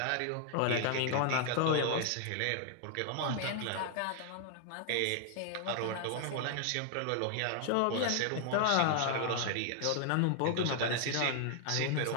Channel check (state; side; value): different; both; correlation 0.00